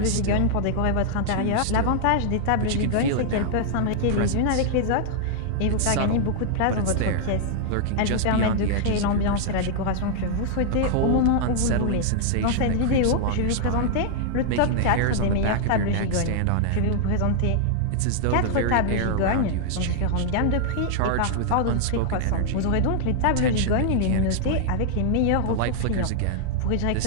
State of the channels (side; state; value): both; different; correlation -0.01